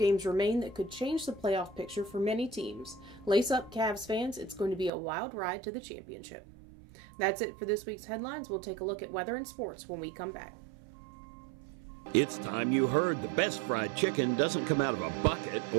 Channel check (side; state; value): left; drops out; at 4.9 s